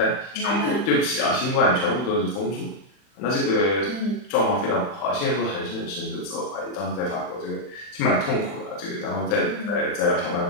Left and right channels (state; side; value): late; right; 40 ms